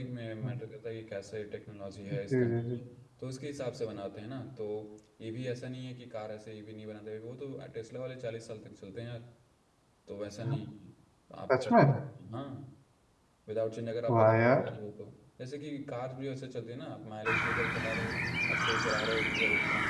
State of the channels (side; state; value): both; identical; correlation 1.00